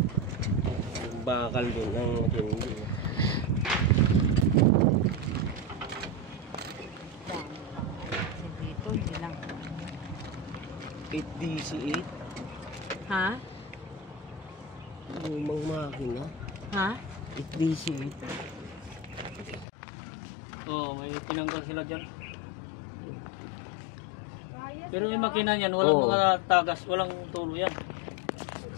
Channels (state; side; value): drops out; right; at 19.7 s